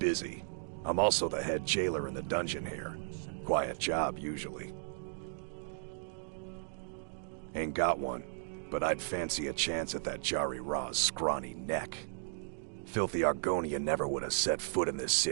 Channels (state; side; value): silent; left; digital silence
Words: I'm also the head jailer in the dungeon here. Quiet job, usually. Ain't got one, but I'd fancy a chance at that Jari Ra's scrawny neck. Filthy Argonia never would have set foot in this